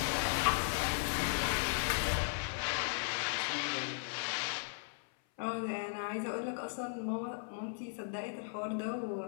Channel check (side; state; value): right; silent; 53 dB below the other